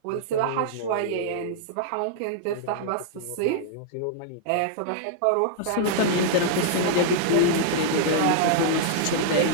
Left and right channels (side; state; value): both; different; correlation -0.01